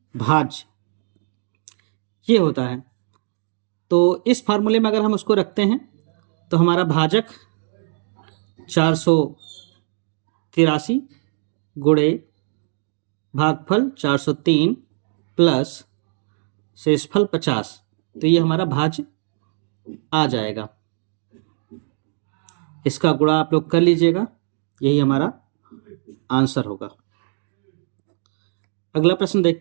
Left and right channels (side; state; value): left; silent; 64 dB below the other